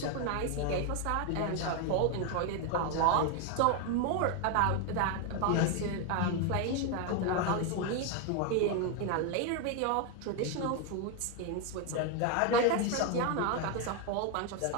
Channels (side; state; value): both; different; correlation 0.01